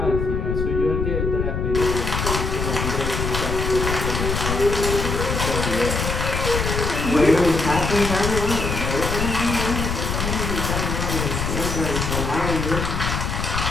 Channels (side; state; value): left; noise; rumble, 2 dB below the sound